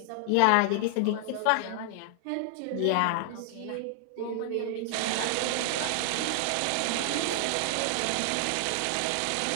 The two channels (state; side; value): different; both; correlation 0.00